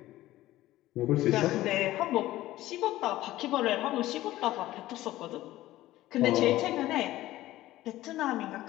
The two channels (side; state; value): right; quieter; 15.7 dB